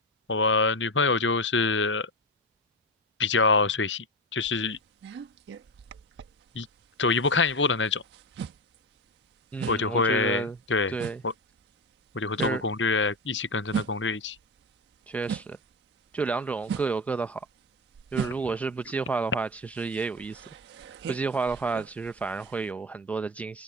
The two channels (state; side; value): normal; both; correlation 0.17